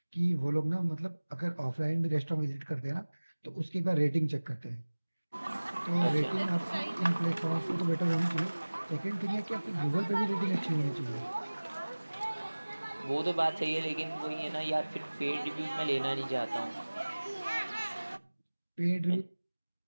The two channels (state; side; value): inverted; both; correlation -1.00